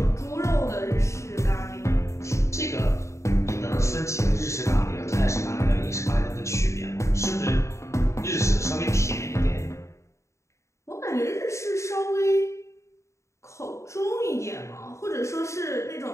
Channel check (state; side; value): late; right; 0.14 ms